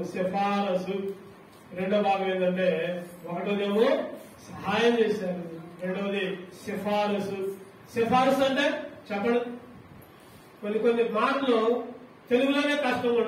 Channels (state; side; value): identical; both; correlation 1.00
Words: సిఫారసు రెండో భాగం ఏంటంటే, ఒకటోదేమో సహాయం చేశారు, రెండవది సిఫారసు అంటే చెప్పండి. కొన్ని మాటలు తెలుగులోనే కష్టంగా